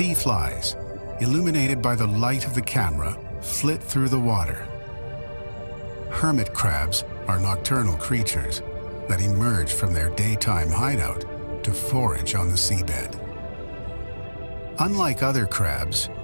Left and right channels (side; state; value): both; inverted; correlation -1.00